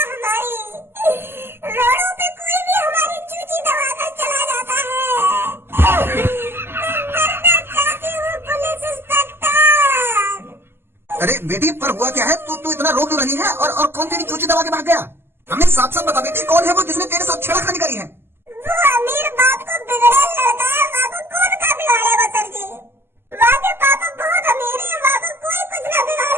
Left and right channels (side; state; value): left; late; 0.11 ms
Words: अरे बेटी पर हुआ क्या है? तू इतना रो क्यों रही है और कौन तेरी चूची दबा के भाग गया? हमें साफ साफ बता बेटी, कौन है वो जिसने तेरे साथ छेड़खानी करी है? वो अमीर बाप को बिगड़े लड़का है, वहाँ को कौन का बिगाड़ेगा सर जी? वहाँ के पापा बहुत अमीर है, वहाँ को कोई कुछ ना बिगाड़